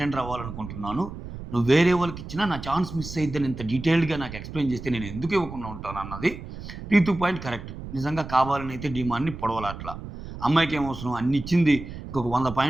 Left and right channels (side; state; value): right; noise; rumble, 11 dB below the sound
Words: అవ్వాలనుకుంటున్నాను. నువ్వు వేరే వాళ్ళకిచ్చినా నా ఛాన్స్ మిస్ అయిద్దని ఇంత డీటెయిల్డ్‌గా నాకు ఎక్స్‌ప్లెయిన్ చేస్తే నేను ఎందుకు ఇవ్వకుండా ఉంటానన్నది రీతూ పాయింట్ కరెక్ట్. నిజంగా కావాలనైతే డీమాన్‌ని పొడవలా అట్లా. అమ్మాయికేం అవసరం అన్ని ఇచ్చింది. ఇంకొక 100